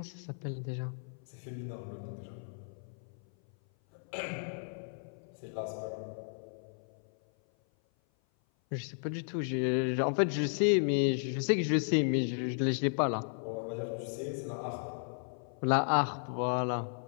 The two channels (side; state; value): right; silent; 55 dB below the other